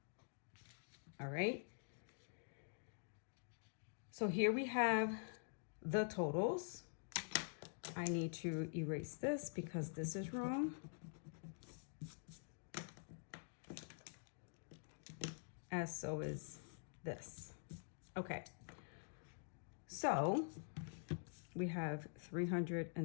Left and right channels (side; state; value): right; silent; digital silence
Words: All right. So here we have the totals. I need to erase this because this is wrong. As so is this. Okay. So we have